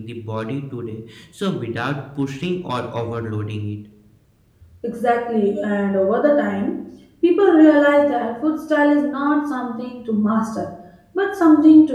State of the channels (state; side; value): identical; both; correlation 1.00